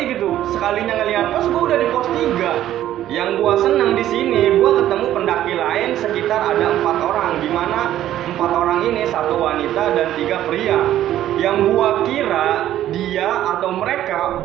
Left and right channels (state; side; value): quieter; left; 12.6 dB